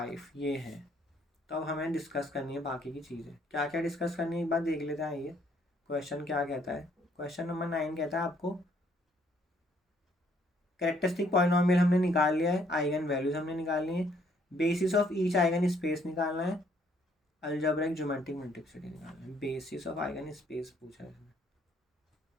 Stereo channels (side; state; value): both; normal; correlation 0.66